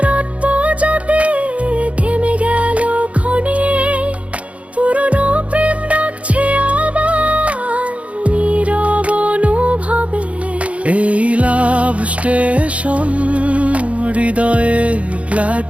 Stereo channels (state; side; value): late; left; 0.064 ms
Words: যাতে থেমে গেল ক্ষণে, পুরনো প্রেম ডাকছে আবার নীরব অনুভবে। এই লাভ স্টেশন হৃদয়ে